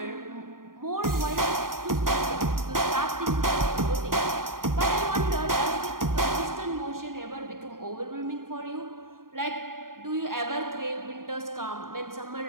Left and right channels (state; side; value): late; left; 0.91 ms